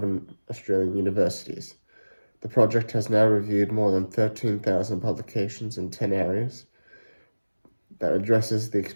Australian universities. The project has now reviewed more than 13,000 publications in 10 areas that addresses the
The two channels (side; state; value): both; inverted; correlation -1.00